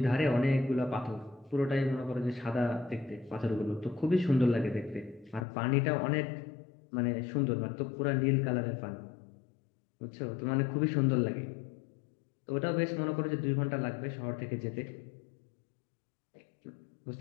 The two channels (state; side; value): drops out; right; at 5.5 s